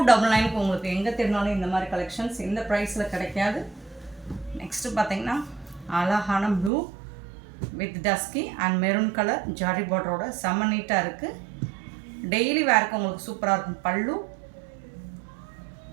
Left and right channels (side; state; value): left; drops out; at 6.7 s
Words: உங்களுக்கு எங்கே திருநாளும் இந்த மாதிரி கலெக்ஷன்ஸ் இந்த ப்ரைஸில் கிடைக்காது. நெக்ஸ்ட்டு பார்த்தீங்கன்னா அழகான blue with dusky and maroon colour zari பார்டரோட செம்ம நீட்டாக இருக்குது. டெய்லி வேருக்கு உங்களுக்கு சூப்பராக இருக்கும் பல்லு.